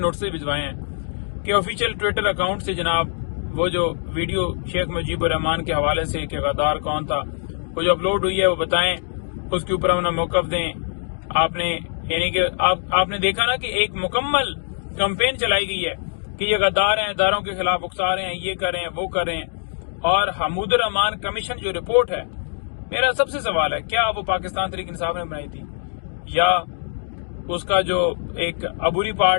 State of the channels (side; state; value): right; silent; digital silence